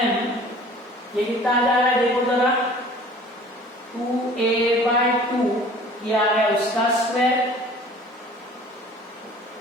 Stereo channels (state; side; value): normal; both; correlation 0.48